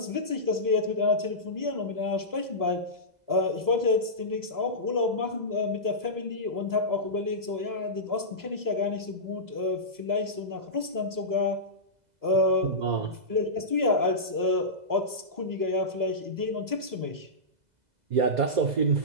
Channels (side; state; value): left; late; 2.0 ms